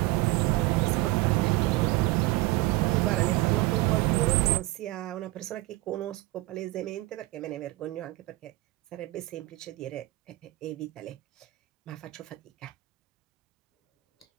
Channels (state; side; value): quieter; left; 19.4 dB